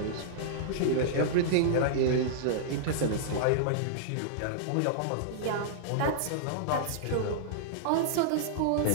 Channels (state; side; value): different; both; correlation -0.02